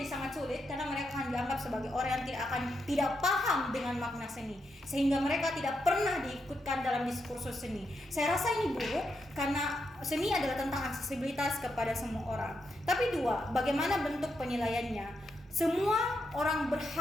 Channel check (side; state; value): both; normal; correlation 0.83